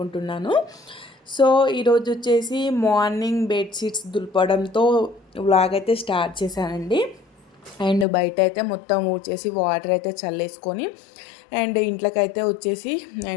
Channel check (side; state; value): right; drops out; at 8.1 s